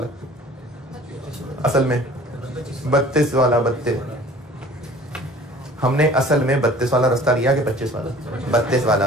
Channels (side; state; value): both; normal; correlation 0.48